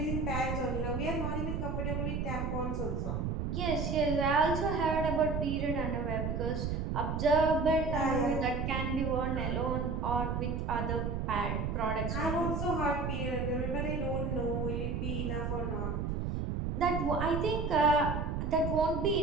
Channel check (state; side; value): noise; right; rumble, 1 dB below the sound